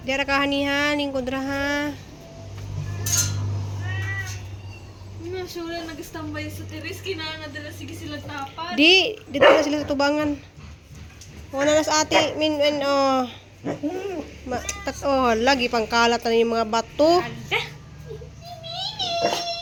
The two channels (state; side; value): identical; both; correlation 1.00